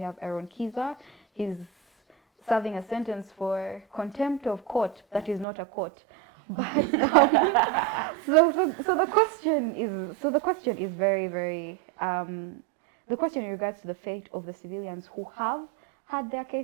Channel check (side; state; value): left; drops out; at 5.5 s